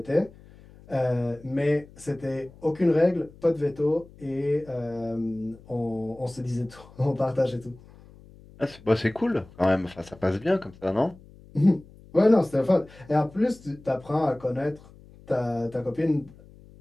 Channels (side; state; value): left; noise; hum, 23 dB below the sound